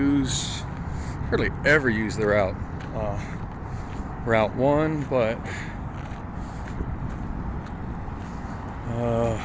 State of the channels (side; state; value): both; identical; correlation 1.00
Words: hardly ever use the Route 1, but